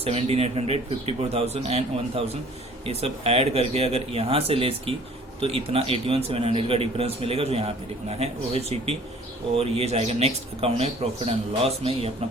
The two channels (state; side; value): normal; both; correlation 0.52